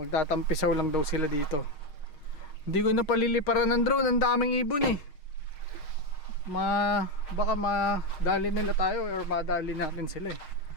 lang daw sila dito. Hindi ko na paliliparan ng drone, ang daming ibon eh. Baka madali nila tayo or madali natin sila eh.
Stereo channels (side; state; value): right; late; 6.5 ms